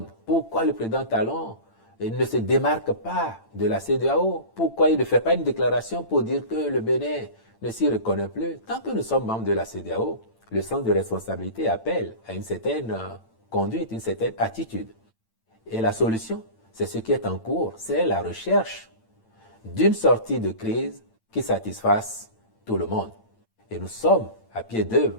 pourquoi le président Talon ne se démarque pas de la CEDEAO, pourquoi il ne fait pas une déclaration pour dire que le Bénin ne s'y reconnaît plus, tant que nous sommes membres de la CEDEAO, le sens de responsabilité appelle à une certaine conduite, une certaine attitude. Et la solution, c'est ce qui est en cours, c'est la recherche d'une sortie de crise qui satisfasse tout le monde. Et nous sommes à pied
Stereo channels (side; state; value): right; late; 8.9 ms